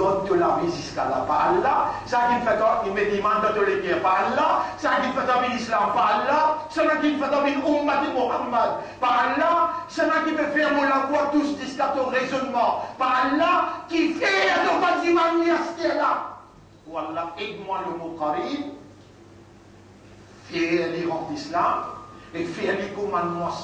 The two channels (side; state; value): both; identical; correlation 1.00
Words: la vie jusqu'à là, par Allah, ça qui fait il me demande de les dire par Allah, ça qui fait l'islam par Allah, ça qui fait l'ummat de Muhammad par Allah, ça qui peut faire mon la voix tous jusqu'à ton raisonnement par Allah, qui fait ton bâtiment là. Wallah, aide-moi le mot Karim, fais l'Iran d'islam, et fais les commandements